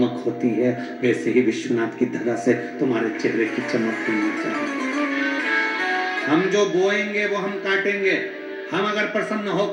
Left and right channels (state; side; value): identical; both; correlation 1.00